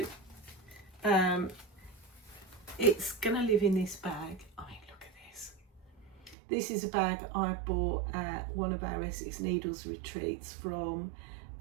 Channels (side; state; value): left; drops out; at 6.4 s